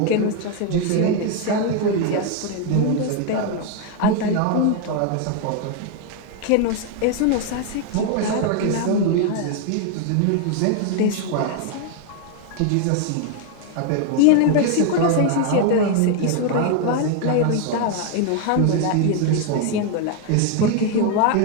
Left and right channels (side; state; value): both; different; correlation 0.01